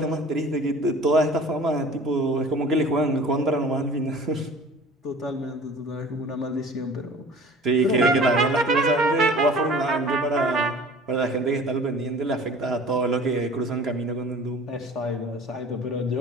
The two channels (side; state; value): both; normal; correlation 0.45